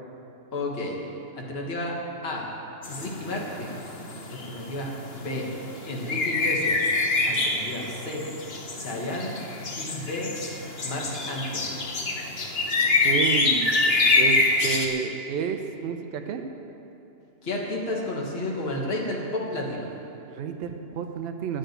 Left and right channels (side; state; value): left; late; 2.9 ms